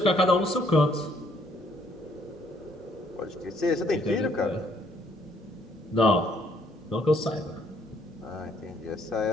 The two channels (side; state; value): both; normal; correlation 0.66